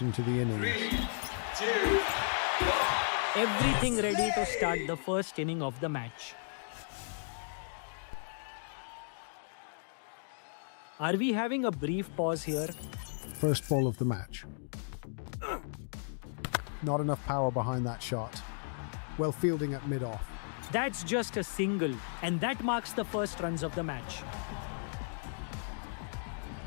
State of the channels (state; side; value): silent; right; digital silence